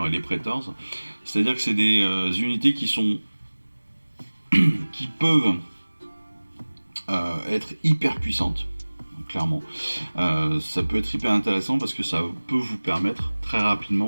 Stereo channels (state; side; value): inverted; both; correlation -1.00